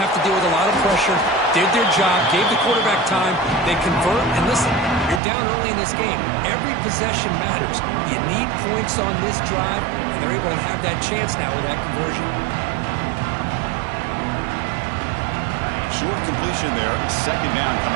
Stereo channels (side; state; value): left; drops out; at 5.2 s